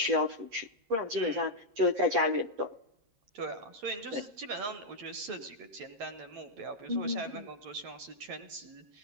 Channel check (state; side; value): late; left; 10 ms